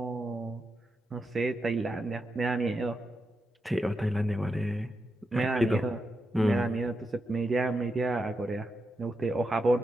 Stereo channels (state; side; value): normal; both; correlation 0.86